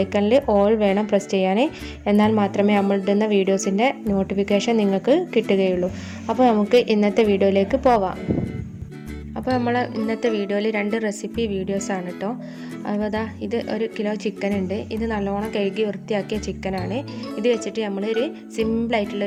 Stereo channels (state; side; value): identical; both; correlation 1.00